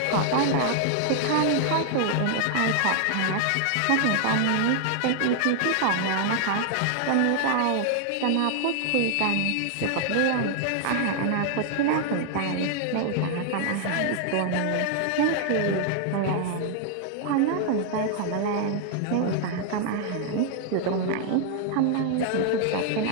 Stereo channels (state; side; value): different; both; correlation 0.00